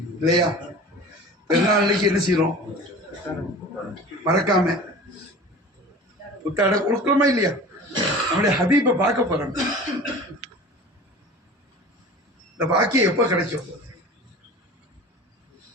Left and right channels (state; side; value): normal; both; correlation 0.39